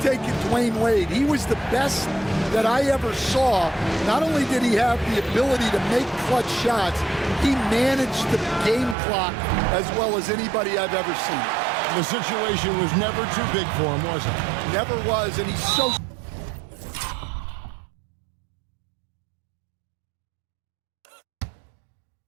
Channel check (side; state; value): left; drops out; at 9.0 s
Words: taking Dwayne Wade. He was the best that I ever saw. Not only did he have the ability to make clutch shots, he managed the game clock as well as anybody I've ever seen. The situation was never too big for him, was it? Never was, and he's so